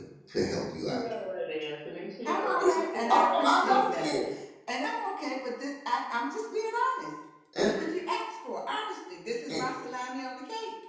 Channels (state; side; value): identical; both; correlation 1.00